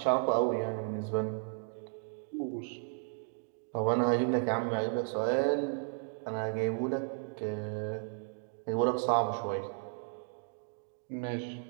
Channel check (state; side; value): silent; left; 55 dB below the other